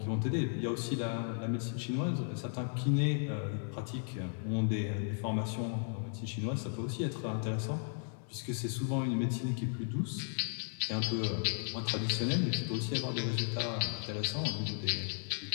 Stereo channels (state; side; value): silent; right; 54 dB below the other